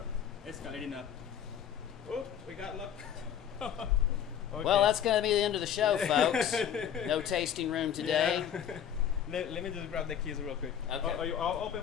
escalating up. Oh, we got luck. Okay. Well, that's going to be the end of the show, folks. No tasting room today. Yeah. Let me just grab the keys real quick. Okay. I'll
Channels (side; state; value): right; quieter; 9.0 dB